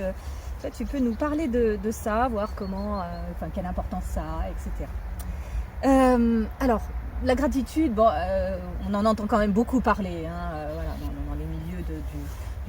peux nous parler de ça, voir comment, quelle importance ça a, etc. Alors la gratitude, on en entend quand même beaucoup parler, voilà, dans les milieux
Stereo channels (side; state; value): both; identical; correlation 1.00